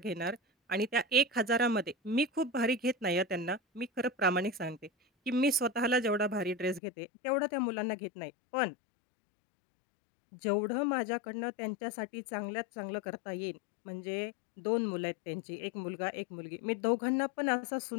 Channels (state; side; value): drops out; right; at 6.8 s